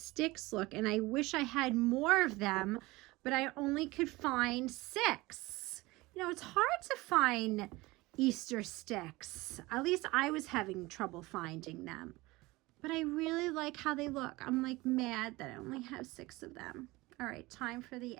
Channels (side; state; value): left; quieter; 21.1 dB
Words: look, and I wish I had more of them, but I only could find 6. You know, it's hard to find Easter sticks. At least I was having trouble finding them. But I really like how they look. I'm like mad that I only have 6 of them. All right, time for the